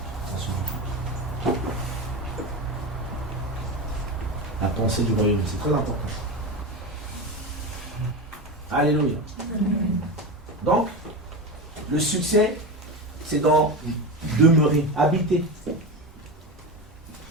On se duplique. La pensée du royaume, c'est très important. Alléluia. Donc, le succès, c'est dans demeurer, habiter.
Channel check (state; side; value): normal; both; correlation 0.22